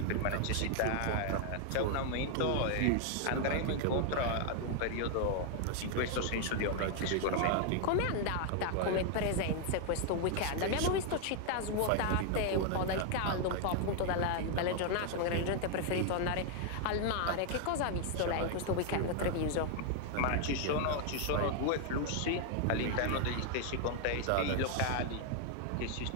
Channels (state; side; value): different; both; correlation 0.00